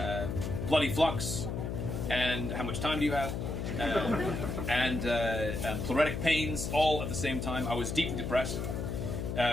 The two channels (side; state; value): left; noise; hum, 3 dB below the sound